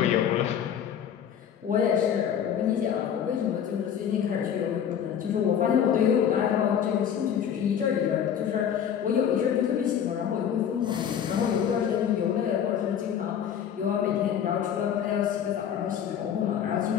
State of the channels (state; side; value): quieter; right; 8.8 dB